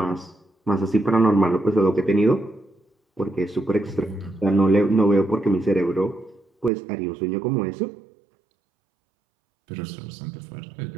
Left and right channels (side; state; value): left; drops out; at 6.7 s